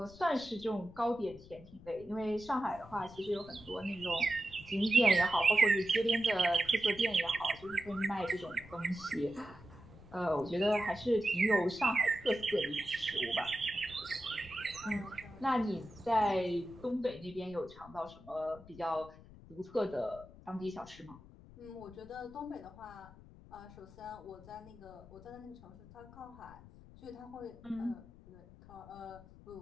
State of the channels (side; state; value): left; noise; rumble, 19 dB below the sound